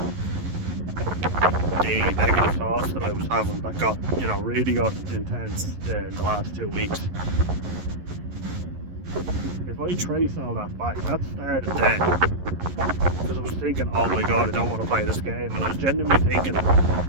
the negative thoughts that I was having that got, you know, really got intense in the last 2 weeks. If I trace all that back, that started then. Because I was thinking, oh my god, I don't want to play this game. And I was genuinely thinking,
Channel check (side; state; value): left; late; 11 ms